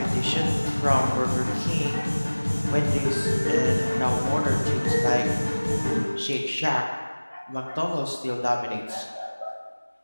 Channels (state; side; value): inverted; both; correlation -1.00